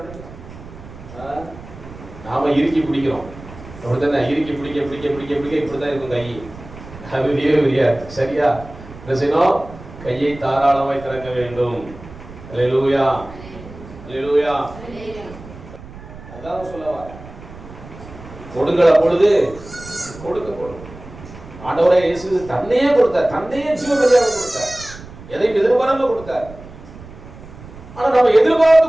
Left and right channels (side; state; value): right; noise; rumble, 16 dB below the sound